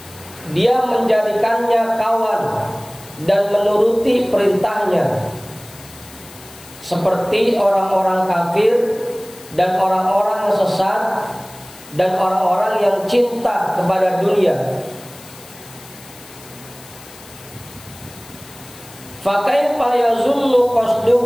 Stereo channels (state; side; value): noise; left; hiss, 20 dB below the sound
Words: dia menjadikannya kawan dan menuruti perintahnya, seperti orang-orang kafir dan orang-orang yang sesat dan orang-orang yang cinta kepada dunia. Fa kaifa yazunnu